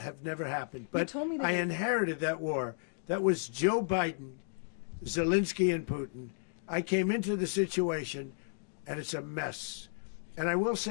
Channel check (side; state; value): right; silent; digital silence